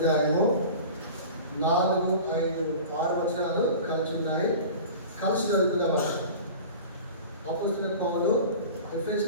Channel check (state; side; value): inverted; both; correlation -0.38